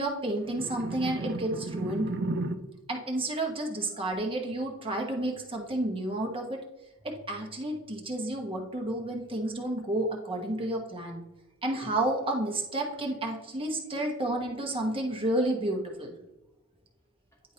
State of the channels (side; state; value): both; normal; correlation 0.50